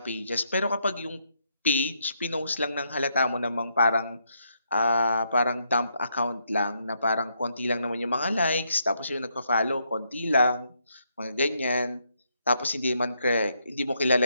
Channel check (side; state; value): both; inverted; correlation -0.77